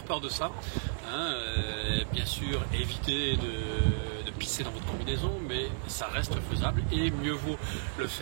peur de ça. Bien sûr, évitez de pisser dans votre combinaison, mais ça reste faisable et mieux vaut le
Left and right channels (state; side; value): silent; left; digital silence